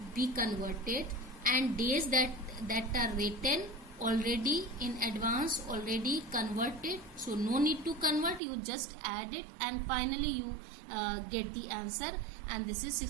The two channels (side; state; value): left; drops out; at 8.4 s